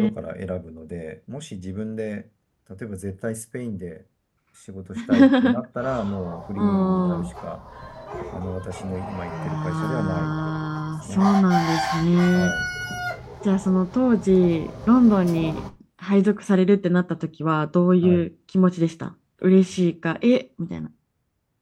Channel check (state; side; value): identical; both; correlation 1.00